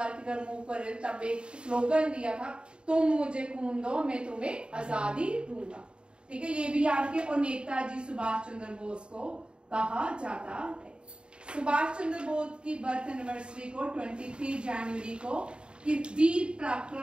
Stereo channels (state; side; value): late; left; 0.052 ms